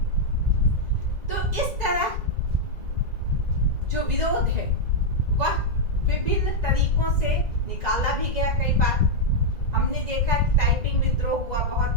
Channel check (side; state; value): left; late; 2.0 ms